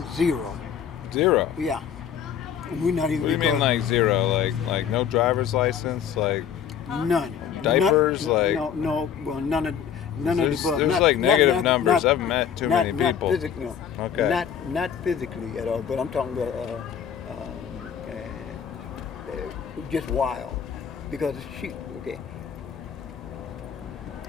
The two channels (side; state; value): right; quieter; 8.3 dB